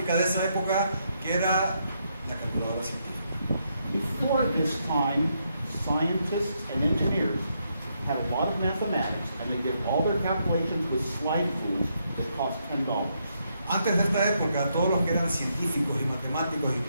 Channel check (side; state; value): both; inverted; correlation -0.78